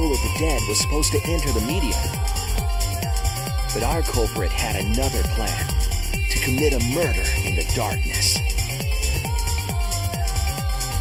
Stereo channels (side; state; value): both; identical; correlation 1.00